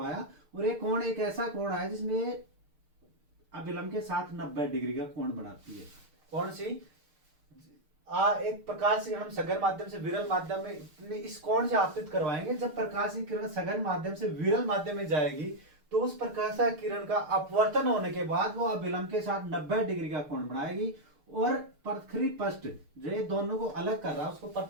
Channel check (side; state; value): left; late; 6.6 ms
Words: और एक कोण, एक ऐसा कोण आया जिसमें अभिलंब के साथ 90 डिग्री का कोण बनाती है। कौन सी? एक प्रकाश से हम सघन माध्यम से विरल माध्यम में इस कोण से आपतित करवाएंगे। जब प्रकाश की किरण सघन माध्यम से विरल माध्यम में जाएगी तो उस प्रकाश किरण का अपवर्तन होने के बाद वो अभिलंब के साथ 90 डिग्री का कोण बनाएगी। और पृथ्वी पृष्ठ जो ये दोनों को अलग कर रहा है उसको